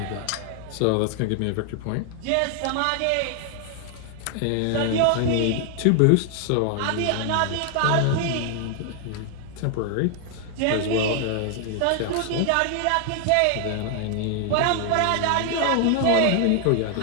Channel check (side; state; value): both; different; correlation 0.00